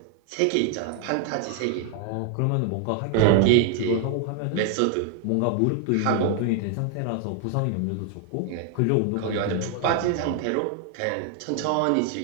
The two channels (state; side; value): different; both; correlation 0.00